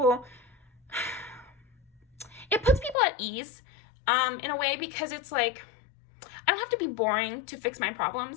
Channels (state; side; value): drops out; right; at 3.0 s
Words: it puts people at ease, in a way, because it's like, I don't have to be boring to fix my